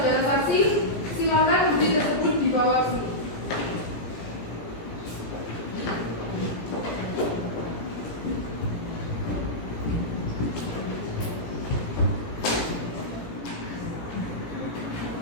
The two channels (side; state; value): right; late; 18 ms